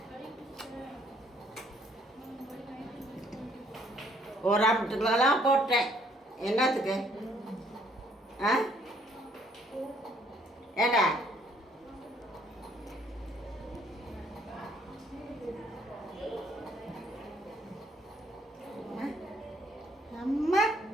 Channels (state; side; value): normal; both; correlation 0.64